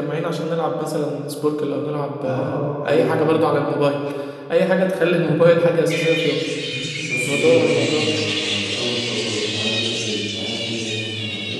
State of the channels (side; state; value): both; identical; correlation 1.00